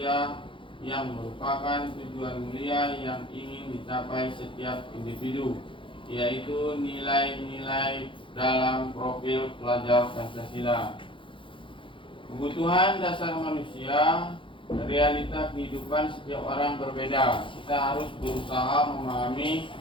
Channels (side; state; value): right; late; 0.25 ms